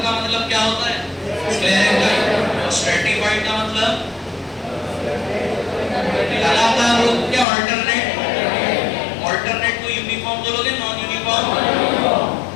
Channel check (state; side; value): drops out; right; at 7.5 s